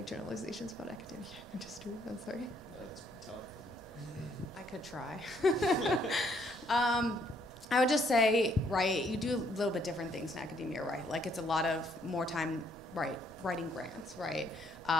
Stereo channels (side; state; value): both; normal; correlation 0.68